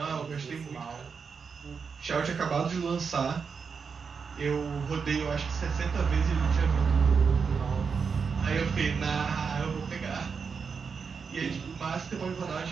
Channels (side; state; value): left; quieter; 5.7 dB